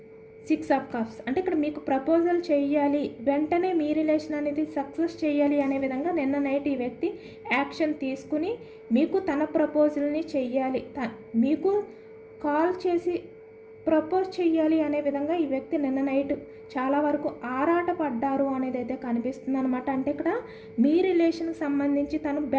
6 of cups, అంటే ఇక్కడ మీకు ప్రపోజల్ చేయాలి, వెంటనే మీ రిలేషన్ అనేది సక్సెస్ చేయాలి అనే విధంగా నిన్న నైట్ ఈ వ్యక్తి యాక్షన్ తీసుకుని మీకు తన ప్రపోజల్ని చెయ్యాలి, మీకు కాల్ చేసి ప్రపోజ్ చెయ్యాలి అనే విధంగా ఈ వ్యక్తి నిన్న నైట్ చాలా వరకు ఆరాటపడ్డారు అనేది అయితే కనిపిస్తుంది అనమాట. అంటే ఇక్కడ మీ రిలేషన్కి సంబంధించి తను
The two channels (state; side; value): identical; both; correlation 1.00